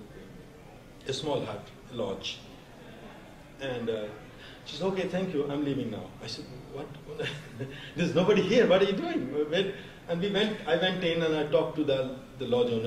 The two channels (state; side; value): identical; both; correlation 1.00